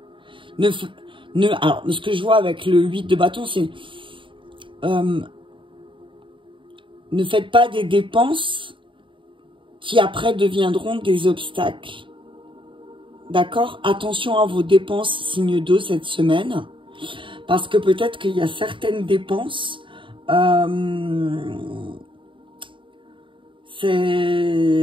Alors, ce que je vois avec le 8 de bâton, c'est... ne faites pas des dépenses qui après deviendront des obstacles. D'accord? Attention à vos dépenses, signe d'eau, cette semaine. Parce que peut-être qu'il y a certaines dépenses. En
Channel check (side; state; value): left; late; 0.24 ms